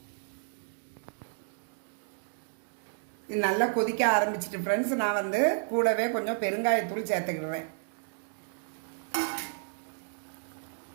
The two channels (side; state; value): left; silent; digital silence